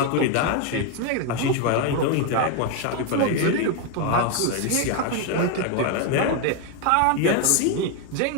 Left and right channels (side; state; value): both; different; correlation 0.01